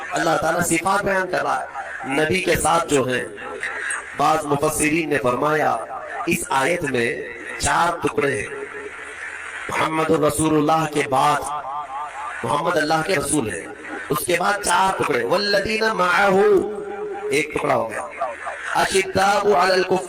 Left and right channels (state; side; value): identical; both; correlation 1.00